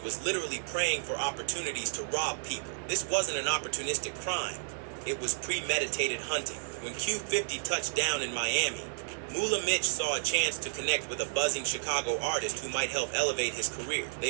was literally praying for opportunities to rob people. This wasn't an opportunistic crime. It was premeditated hunting. When Q50 touched down in Miami, Moolah Mitch saw a chance to connect with a buzzing Chicago artist who might help elevate his career.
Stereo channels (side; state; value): left; silent; digital silence